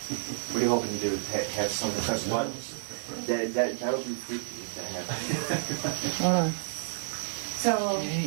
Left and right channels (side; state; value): left; silent; digital silence